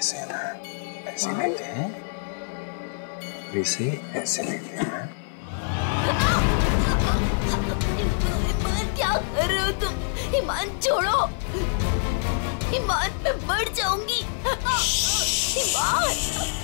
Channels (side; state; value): right; silent; 57 dB below the other